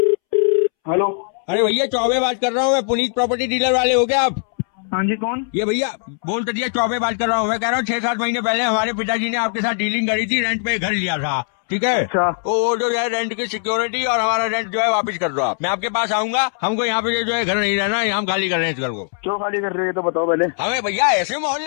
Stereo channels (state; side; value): silent; right; 66 dB below the other